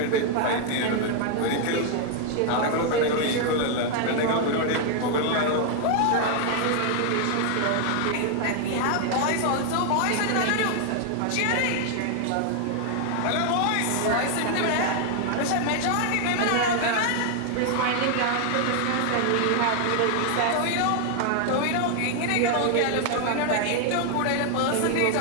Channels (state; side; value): different; both; correlation 0.00